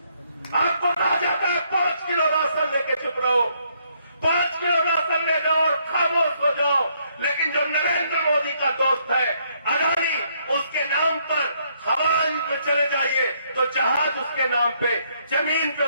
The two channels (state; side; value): inverted; both; correlation -0.71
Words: आपको कहा जाता है 5 किलो राशन लेके चुप रहो, 5 किलो राशन ले जाओ और खामोश हो जाओ। लेकिन जो नरेंद्र मोदी का दोस्त है अदानी, उसके नाम पर हवाई में चले जाइए तो जहाज उसके नाम पे, जमीन पे